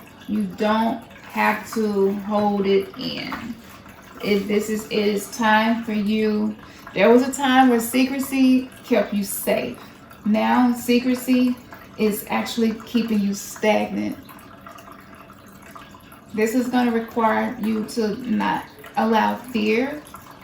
you don't have to hold it in. It is time for you. There was a time where secrecy kept you safe. Now, secrecy is actually keeping you stagnant. This is going to require you to not allow fear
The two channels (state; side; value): identical; both; correlation 1.00